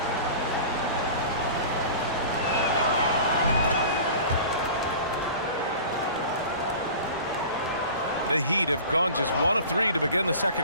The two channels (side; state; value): both; inverted; correlation -0.39